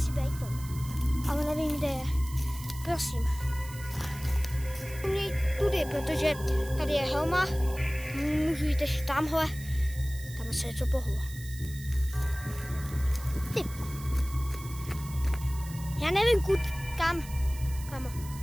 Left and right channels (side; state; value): right; noise; hiss, 16 dB below the sound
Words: být Tom. Ale nevím, kde je. Prosím. Měj tudy, protože tady je helma. Můžu jít ještě tamhle. Tam se něco pohlo. Ty. Já nevím, kam.